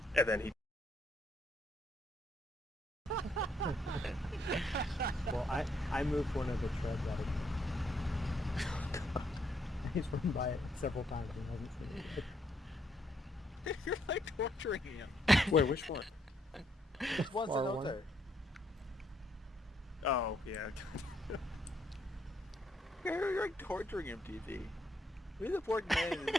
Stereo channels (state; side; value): normal; both; correlation 0.72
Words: And then he... Well, I moved one of the treads out of He's run by it several times and hasn't seen it. You're like torturing him. Wait, which one? There's one Far sitting out one. there. Oh, yeah. You're like torturing him, TV. Leave the poor man in